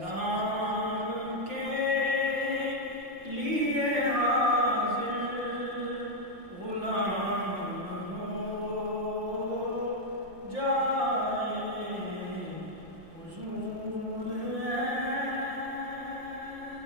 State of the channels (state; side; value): late; left; 5.8 ms